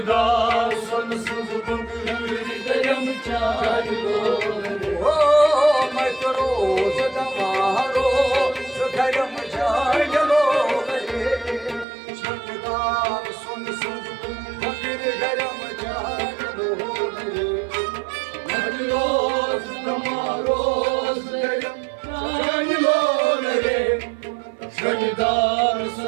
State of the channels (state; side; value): drops out; left; at 11.9 s